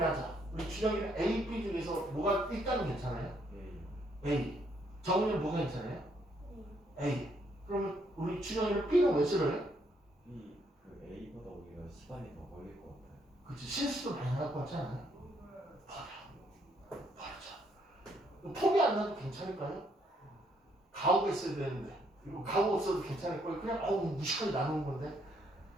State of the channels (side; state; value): both; normal; correlation 0.71